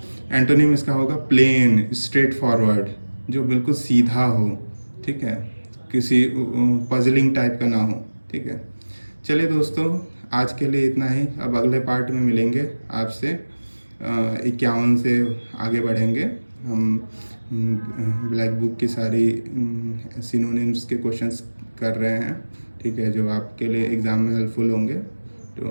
एंटोनिम इसका होगा प्लेन, स्ट्रेट फॉरवर्ड, जो बिल्कुल सीधा हो, ठीक है, किसी पजलिंग टाइप का ना हो, ठीक है। चलिए दोस्तों, आज के लिए इतना ही। अब अगले पार्ट में मिलेंगे आपसे, 51 से आगे बढ़ेंगे हम। ब्लैक बुक की सारी सिनोनिम्स के क्वेश्चंस कर रहे हैं, ठीक है, जो आपके लिए एग्ज़ाम में हेल्पफुल होंगे।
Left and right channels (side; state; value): both; inverted; correlation -1.00